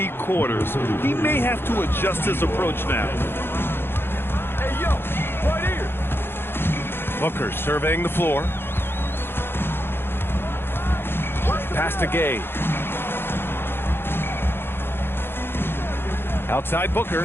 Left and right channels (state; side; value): late; right; 0.11 ms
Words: quarters. He may have to adjust his approach now. Hey, yo, right here. Booker surveying the floor. Pass to Gay. Outside